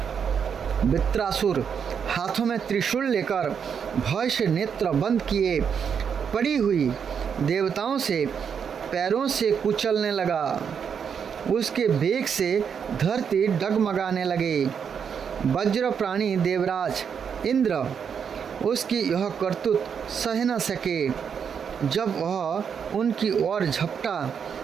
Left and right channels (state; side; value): quieter; left; 7.1 dB